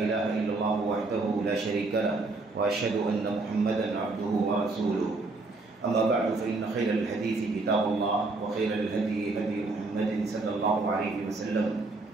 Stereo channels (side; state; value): left; quieter; 3.4 dB